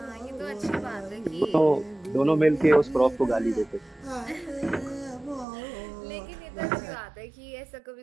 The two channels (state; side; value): drops out; left; at 5.5 s